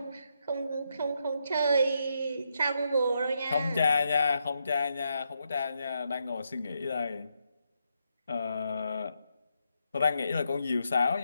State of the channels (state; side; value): inverted; both; correlation -0.81